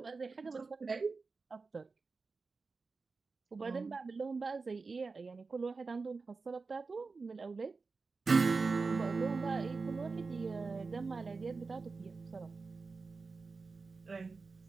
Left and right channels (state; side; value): quieter; left; 4.3 dB